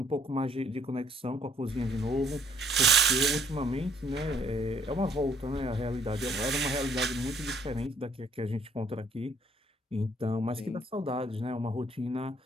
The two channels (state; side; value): normal; both; correlation 0.63